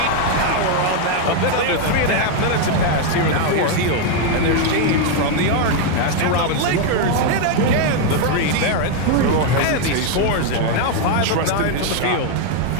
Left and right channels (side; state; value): both; different; correlation 0.01